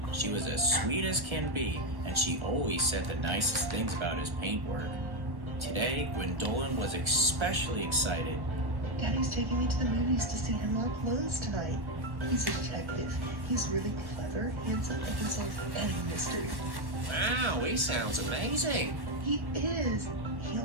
She was as sweet as can be, and she always said the nicest things about his paintwork. Today, Gwendolyn was especially excited. Daddy's taking me to the movies to see him up close tonight. He's a detective. He's really clever, handsome, and can solve any mystery. Wow, he sounds amazing. He is. He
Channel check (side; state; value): left; late; 1.1 ms